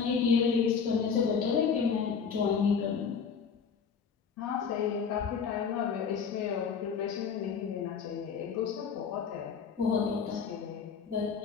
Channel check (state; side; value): quieter; right; 6.3 dB